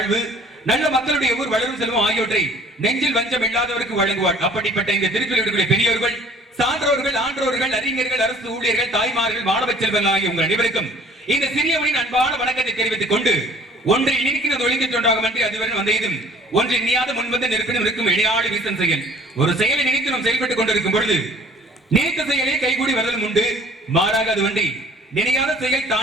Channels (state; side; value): normal; both; correlation 0.53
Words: நல்ல மக்களுடைய ஊர் வளரும் செல்வம் ஆகியவற்றை நெஞ்சில் வஞ்சம் இல்லாதவருக்கு வழங்குவார். அப்படிப்பட்ட இந்த திருக்குறளுடைய பெரியவர்கள், சான்றோர்கள், ஆன்றோர்கள், அறிஞர்கள், அரசு ஊழியர்கள், தாய்மார்கள், மாணவ செல்வங்கள் ஆகிய உங்கள் அனைவருக்கும் இந்த சிறியவனின் அன்பான வணக்கத்தை தெரிவித்துக் கொண்டு, ஒன்றில் நிற்கிறது ஒழுங்கிச் ஒன்றாகும் என்று அதுவரை வந்ததும் ஒன்றில் நீயாத முன்வந்து நெருப்பினும் இருக்கும் இணையாடு வீசன் செயல். ஒரு செயலை நினைத்து நாம் செயல்பட்டுக் கொண்டிருக்கும் பொழுது நினைத்த செயலே கைகூடி வருதலும் உண்டு, மாறாக அது ஒன்றி நினையாத செயல்